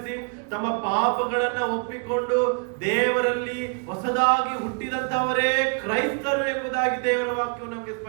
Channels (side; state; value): left; quieter; 38.0 dB